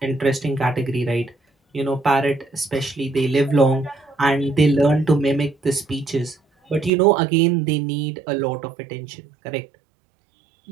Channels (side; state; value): left; drops out; at 6.9 s